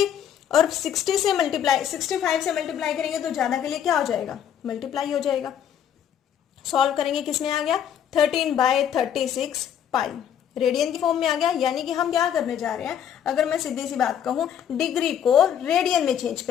और 65 से मल्टीप्लाई करेंगे तो ज्यादा के लिए क्या हो जाएगा? मल्टीप्लाई हो जाएगा। सॉल्व करेंगे, किसमें आ गया? 13/36 पाई रेडियन की फॉर्म में आ गया। यानी कि हम क्या करने जा रहे हैं, अगर मैं सीधी सी बात कहूं, डिग्री को रेडियन में चेंज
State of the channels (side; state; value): right; quieter; 9.3 dB